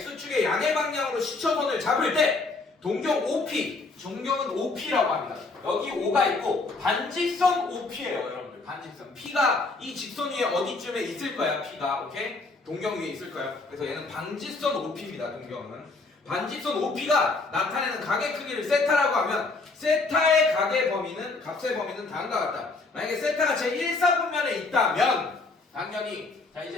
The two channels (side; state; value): right; quieter; 3.7 dB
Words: 양의 방향으로 시초선을 잡을 때 동경 OP, 동경은 OP라고 합니다. 여기 O가 있고 반직선 OP예요, 여러분들. 반직선. P가 이 직선 위에 어디쯤에 있을 거야, P가. 오케이? 동경 위에 있을 거예요. 그래서 얘는 반직선 OP입니다. 동경은 반직선 OP가 나타내는 각의 크기를 세타라고 하면 세타의 각의 범위는, 값의 범위는 다음과 같다. 만약에 세타가 제 1사분면에 있다면 당연히, 자,